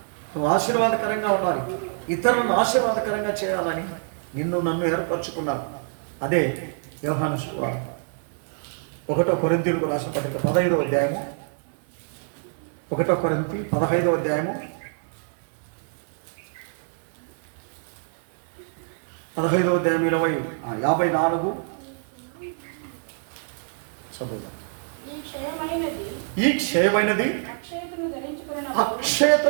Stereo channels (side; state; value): left; silent; 61 dB below the other